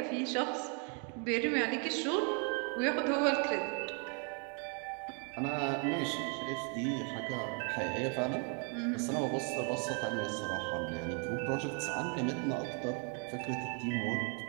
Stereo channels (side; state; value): left; quieter; 38.4 dB